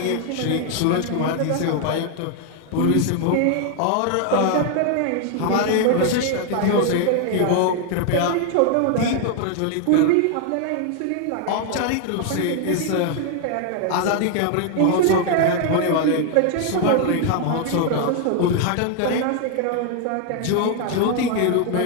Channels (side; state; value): both; different; correlation 0.00